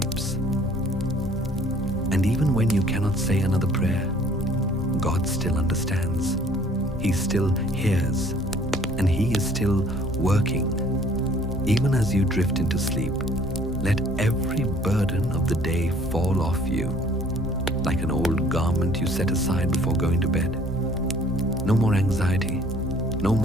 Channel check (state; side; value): normal; both; correlation 0.56